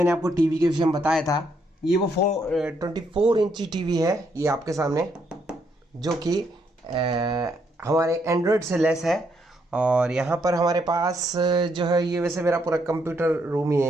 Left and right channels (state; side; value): normal; both; correlation 0.75